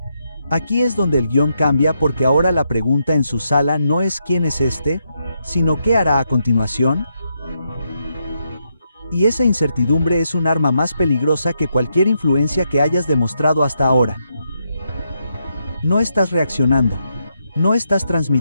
Aquí es donde el guión cambia, porque ahora la pregunta en su sala no es ¿quién es este?, sino ¿qué hará a continuación? Y esa incertidumbre es un arma más peligrosa que cualquier influencia que hayas demostrado hasta ahora. No estás reaccionando. No estás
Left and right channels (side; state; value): both; inverted; correlation -0.80